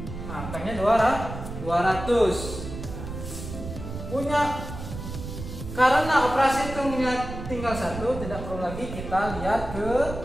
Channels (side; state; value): right; noise; rumble, 9 dB below the sound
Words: Nah, hutangnya 200. Punya, karena operasi hitungnya tinggal 1, tidak perlu lagi kita lihat ke